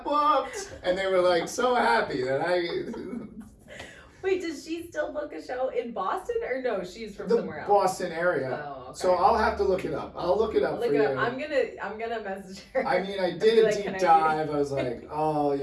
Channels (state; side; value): identical; both; correlation 1.00